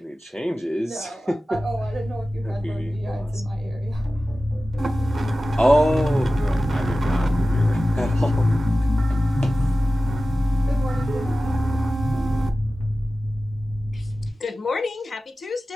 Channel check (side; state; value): both; normal; correlation 0.95